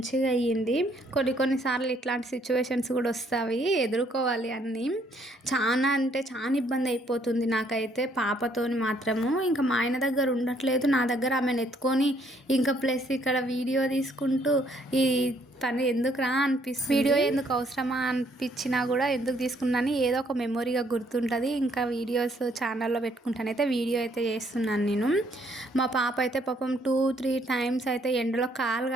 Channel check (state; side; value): normal; both; correlation 0.67